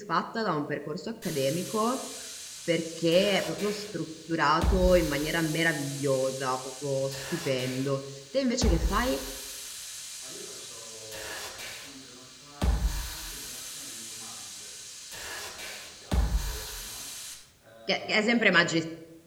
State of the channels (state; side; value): identical; both; correlation 1.00